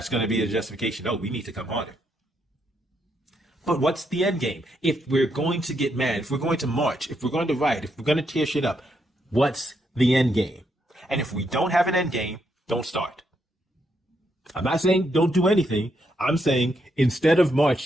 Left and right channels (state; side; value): normal; both; correlation 0.78